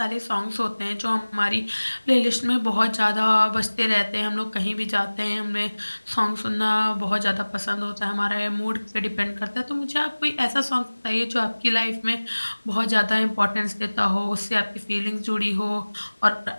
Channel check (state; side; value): inverted; both; correlation -1.00